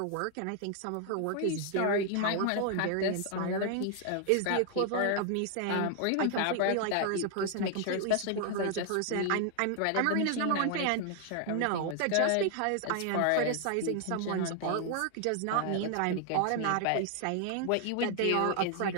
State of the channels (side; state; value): both; different; correlation 0.00